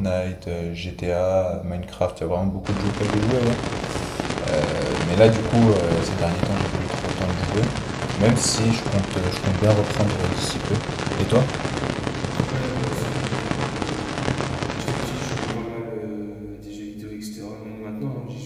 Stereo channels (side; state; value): both; identical; correlation 1.00